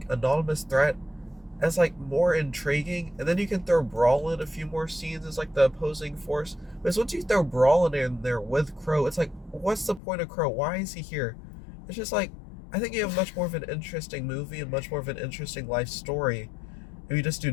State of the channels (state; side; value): drops out; right; at 10.0 s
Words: anonymous threat, as like more intriguing, and then you can throw Brawl in a few more scenes as like the opposing force. Because once you throw Brawl in there with Crow, it's like, what's the point of Crow? Why is he here? It's just like, I think you have much more of an interesting movie and much more of an interesting life story if you just do